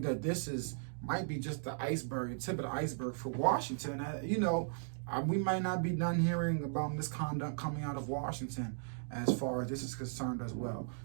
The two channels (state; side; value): silent; left; digital silence